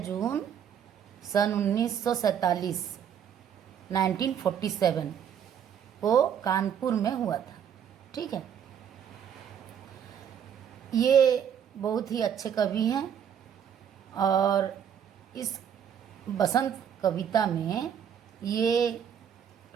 जून सन 1947 1947 को कानपुर में हुआ था। ठीक है, ये बहुत ही अच्छे कवि हैं और इस बसंत कविता में ये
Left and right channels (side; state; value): left; quieter; 8.5 dB